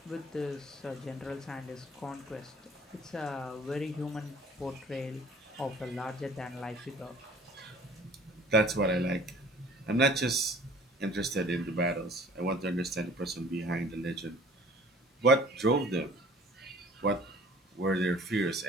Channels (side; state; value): both; normal; correlation 0.50